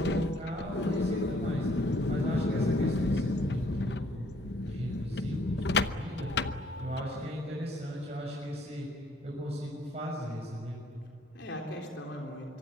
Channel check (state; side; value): normal; both; correlation 0.63